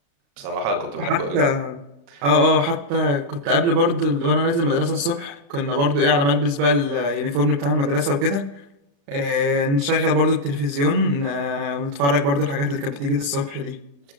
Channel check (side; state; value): left; late; 35 ms